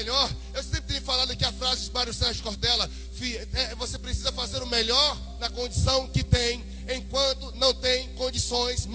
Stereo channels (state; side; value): identical; both; correlation 1.00